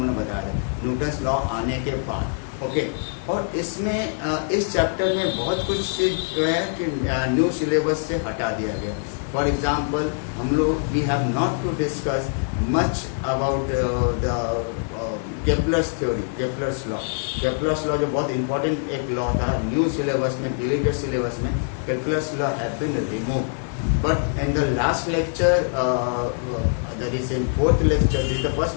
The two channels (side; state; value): right; silent; 63 dB below the other